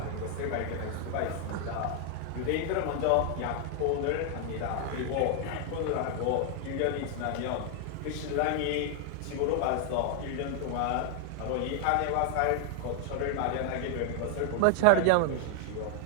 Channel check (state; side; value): different; both; correlation 0.00